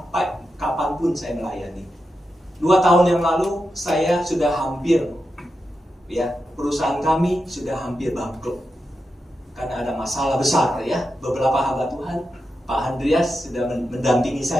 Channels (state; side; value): normal; both; correlation 0.88